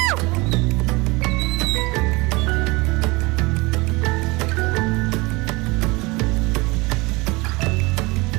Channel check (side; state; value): left; quieter; 24.3 dB